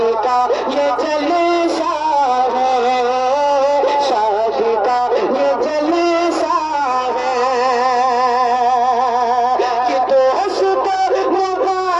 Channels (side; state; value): right; noise; hum, 28 dB below the sound